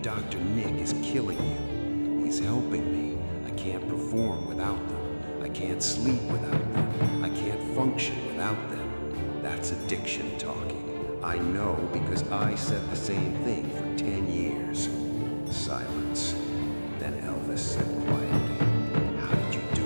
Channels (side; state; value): both; inverted; correlation -1.00